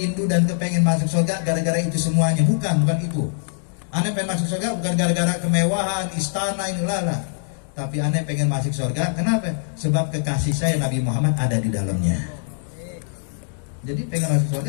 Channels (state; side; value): silent; right; digital silence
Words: dan kepengen masuk sorga gara-gara itu semuanya. Bukan itu. Aneh pengen masuk surga bukan gara-gara kemewahan, istana ini lala. Tapi aneh pengen masuk surga, kenapa? Sebab kekasih saya Nabi Muhammad ada di dalamnya. Jadi pengen masuk